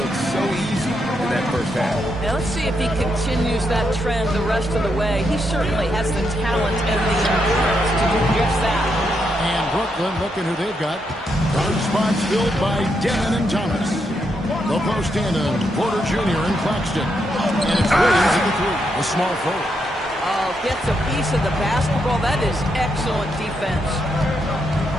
so easy in that first half. Now let's see if he continues that trend the rest of the way. He certainly has the talent and the endurance to do just that. And Brooklyn, looking who they've got. Guard spots filled by Demon and Thomas. The post in Porter Jr. and Claxton. And it's Williams at the 3. A small forward. Oh, gets a piece of the basketball. That is excellent defense.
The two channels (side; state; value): both; normal; correlation 0.80